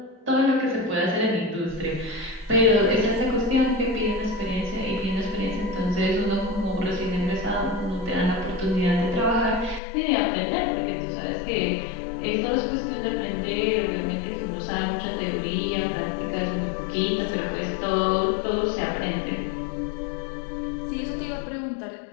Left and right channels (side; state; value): right; drops out; at 9.8 s